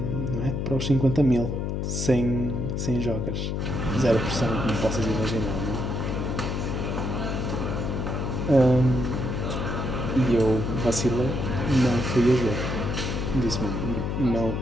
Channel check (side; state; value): left; noise; hum, 1 dB below the sound